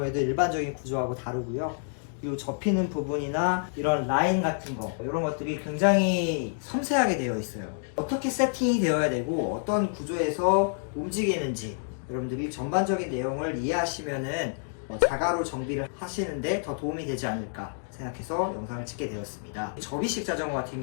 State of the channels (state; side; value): silent; right; digital silence